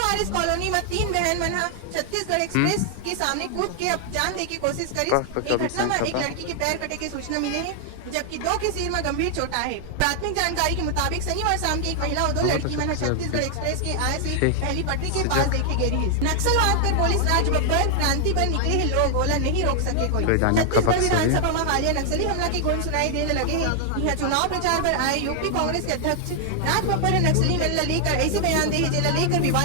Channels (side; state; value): both; different; correlation 0.00